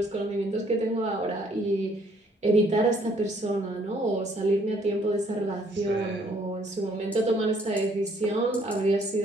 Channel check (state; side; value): normal; both; correlation 0.64